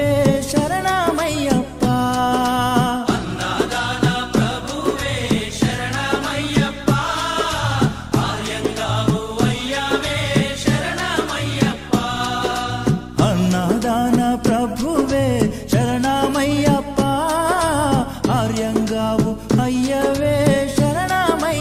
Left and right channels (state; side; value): identical; both; correlation 1.00